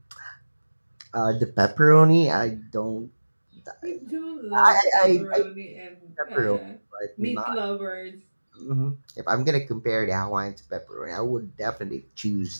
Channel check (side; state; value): both; inverted; correlation -1.00